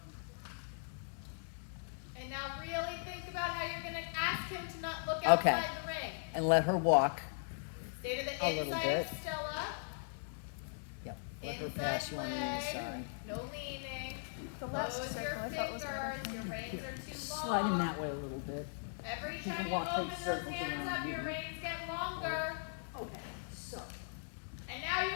And now really think about how you're going to ask him to not look Okay. outside the ring. And let her walk. Stay to the A little inside bit. of Stella. Yep. Let her Inside pass you on the leg. inside. No leaning. The last Close circle your I thought was better. fingers. Your reins are too long. Slide in that way a little bit. Every You time can you walk open big those circles hands around up, you. your reins get longer. Okay, so. And now you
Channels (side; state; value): right; silent; digital silence